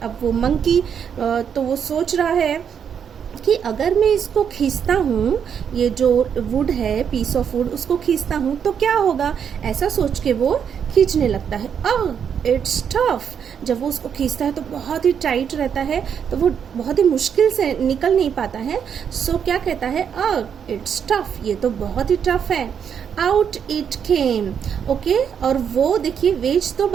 अब वो मंकी तो वो सोच रहा है कि अगर मैं इसको खींचता हूँ, ये जो वुड है, पीस ऑफ वुड, उसको खींचता हूँ तो क्या होगा, ऐसा सोच के वो खींचने लगता है। It's tough. जब वो उसको खींचता है तो बहुत ही टाइट रहता है, तो वो बहुत ही मुश्किल से निकल नहीं पाता है। सो क्या कहता है? इट्स टफ, ये तो बहुत ही टफ है। Out it came. ओके, और वो देखिए वेज तो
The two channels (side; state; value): left; quieter; 7.7 dB